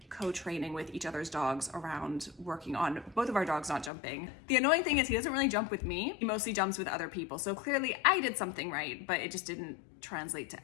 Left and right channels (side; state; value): right; drops out; at 3.9 s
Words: co-training with each other's dogs around working on both of our dogs not jumping. The annoying thing is he doesn't really jump with me. He mostly jumps with other people. So clearly I did something right, but it just didn't translate to